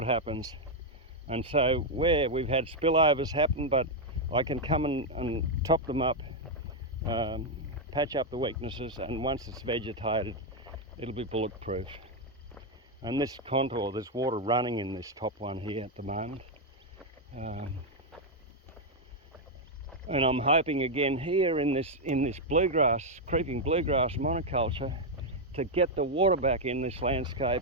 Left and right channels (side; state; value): both; normal; correlation 0.01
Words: happens. And so where we've had spillovers happen, but I can come and top them up, patch up the weaknesses, and once it's vegetated, it'll be bulletproof. And this contour, there's water running in this top one here at the moment. And I'm hoping again here in this bluegrass, creeping bluegrass monoculture, to get the water back in this landscape,